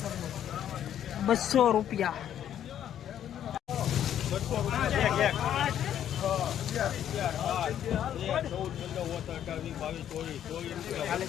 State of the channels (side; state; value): right; quieter; 10.3 dB